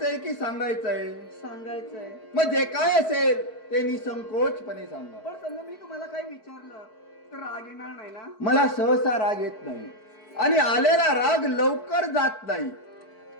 की सांगायचंय? सांगायचंय. मग जे काय असेल ते निसंकोचपणे सांगा. पण समजा मी तुम्हाला काही विचारलं तर राग येणार नाही ना? मला सहसा राग येत नाही आणि आलेला राग लवकर जात नाही.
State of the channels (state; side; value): late; right; 4.6 ms